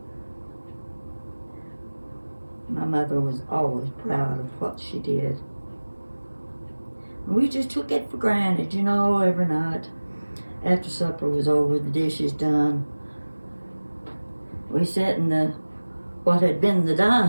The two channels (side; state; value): both; inverted; correlation -1.00